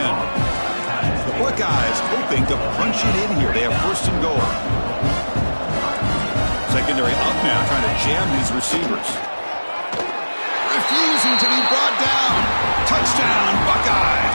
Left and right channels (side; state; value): both; inverted; correlation -1.00